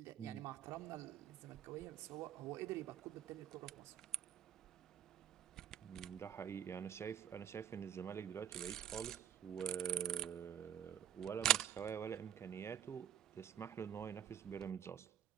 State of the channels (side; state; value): left; quieter; 10.0 dB